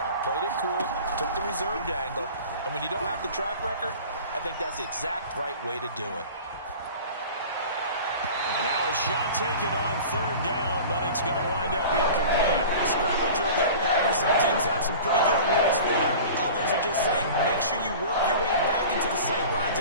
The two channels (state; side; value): inverted; both; correlation -0.39